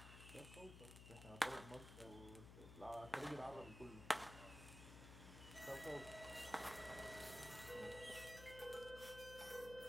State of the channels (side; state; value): left; noise; hum, 11 dB below the sound